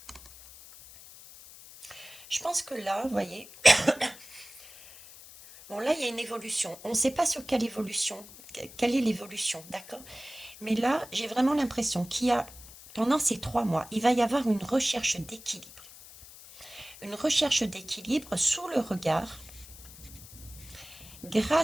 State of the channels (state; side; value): noise; left; hiss, 18 dB below the sound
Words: Je pense que là, vous voyez, bon là, il y a une évolution. On ne sait pas sur quelle évolution, quelle est l'évolution, d'accord? Mais là, j'ai vraiment l'impression qu'il y a, pendant ces 3 mois, il va y avoir une recherche d'équilibre. Une recherche d'équilibre sous le regard,